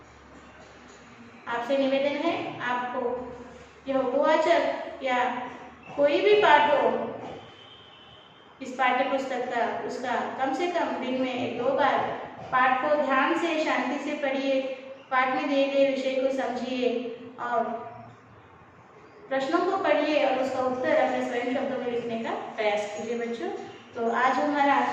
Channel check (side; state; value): both; identical; correlation 1.00